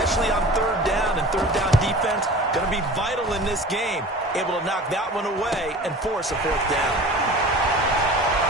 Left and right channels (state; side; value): normal; both; correlation 0.39